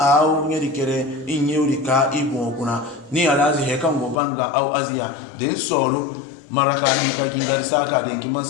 ngeri kere inyeuri ka ibu kuna ni alazi heka ngobanga au azia den solo maraka hinka gingari saka den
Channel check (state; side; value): drops out; right; at 4.2 s